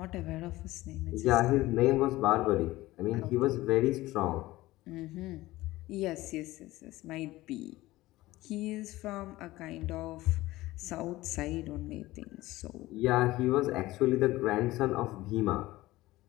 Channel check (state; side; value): quieter; right; 18.0 dB